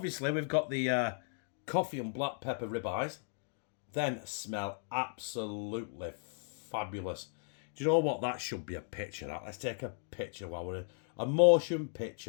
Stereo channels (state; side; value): silent; right; 54 dB below the other